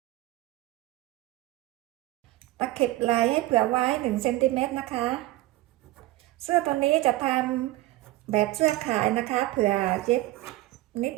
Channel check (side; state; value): left; quieter; 17.6 dB